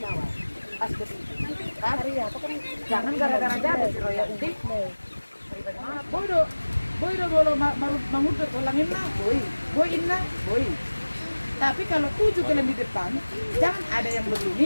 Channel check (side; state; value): both; inverted; correlation -1.00